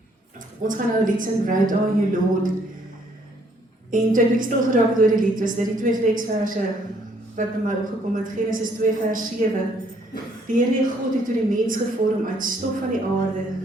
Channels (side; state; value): both; normal; correlation 0.66